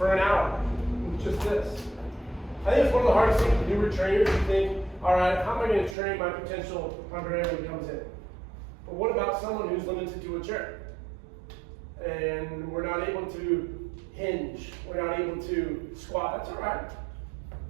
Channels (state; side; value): drops out; left; at 6.0 s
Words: an hour with just this? I think it's one of the hardest things to do with trainers. You think, all right, how am I going to train my potential undergraduate when he comes in? But what about someone who's limited to a chair? And we're not able to hinge, we're not able to squat. That's all right.